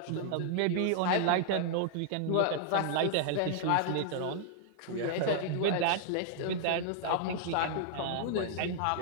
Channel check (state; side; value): different; both; correlation 0.00